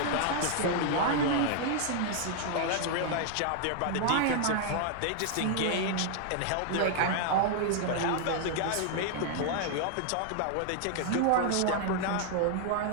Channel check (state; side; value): different; both; correlation 0.00